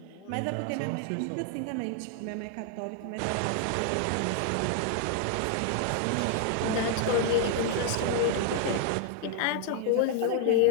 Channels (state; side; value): different; both; correlation 0.00